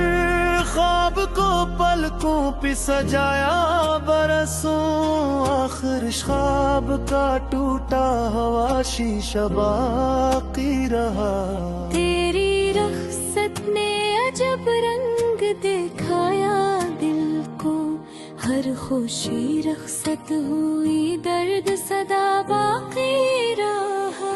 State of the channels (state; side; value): identical; both; correlation 1.00